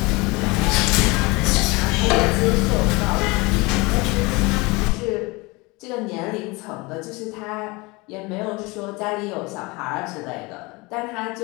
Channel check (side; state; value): right; quieter; 25.0 dB